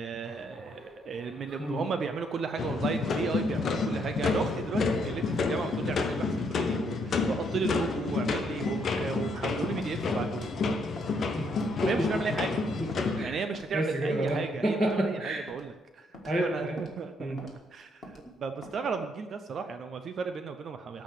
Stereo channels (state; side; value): normal; both; correlation 0.72